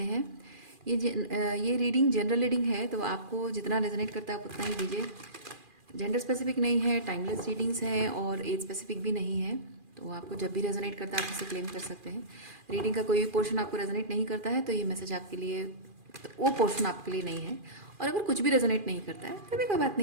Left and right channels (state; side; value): late; left; 2.4 ms